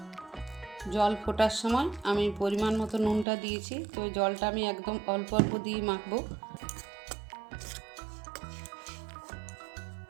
জল ফোটার সময় আমি পরিমাণ মতো নুনটা দিয়েছি, তো ওই জলটা আমি একদম অল্প অল্প দিয়ে মাখবো।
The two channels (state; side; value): drops out; left; at 3.2 s